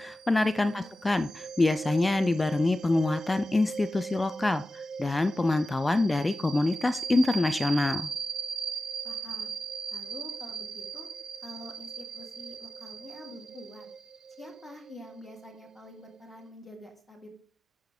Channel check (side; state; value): both; normal; correlation 0.94